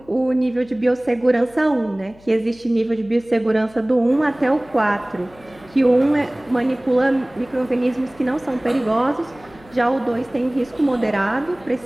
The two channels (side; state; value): left; noise; hum, 26 dB below the sound